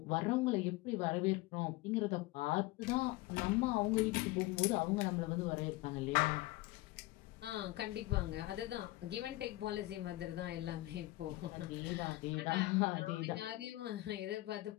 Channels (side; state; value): right; quieter; 19.3 dB